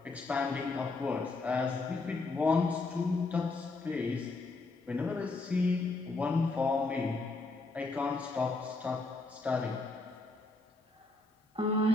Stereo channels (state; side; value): quieter; right; 3.5 dB